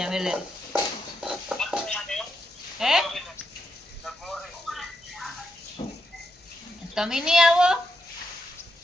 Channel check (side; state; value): both; normal; correlation 0.82